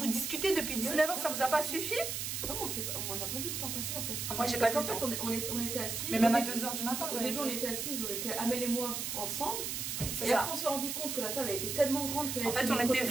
discutez depuis 19 h, ça vous a pas suffi? Comment on n'a pas vu le temps passer en fait. Moi j'ai pas vu le temps. En fait on était assis. Mais même à 2 h du matin. Au début on était assis, on était Amel et moi ensemble. Et ça. après on s'est rendu compte que la table a été tellement grande qu'elle en fait on était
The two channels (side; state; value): right; noise; hiss, 3 dB below the sound